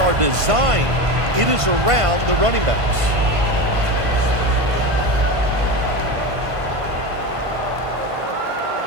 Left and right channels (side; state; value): left; late; 1.5 ms